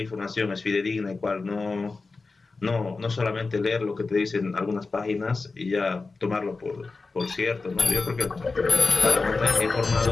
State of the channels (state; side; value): quieter; right; 4.0 dB